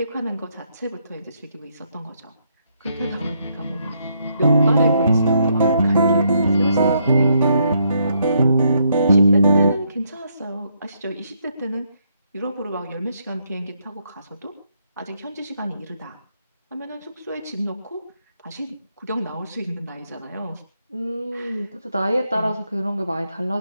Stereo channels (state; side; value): inverted; both; correlation -0.75